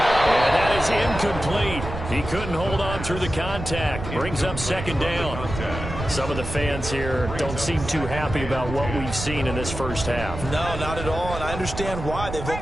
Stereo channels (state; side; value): noise; right; rumble, 8 dB below the sound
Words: And that is incomplete. He couldn't hold on through the contact. Brings up second down. Some of the fans here don't seem too happy about what we've seen in this first half. No, not at all, and I understand why. They've